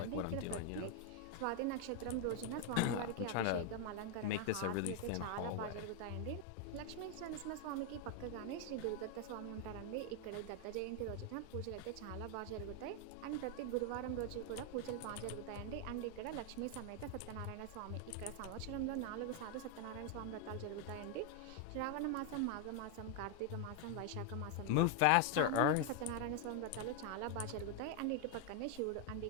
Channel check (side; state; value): both; different; correlation 0.01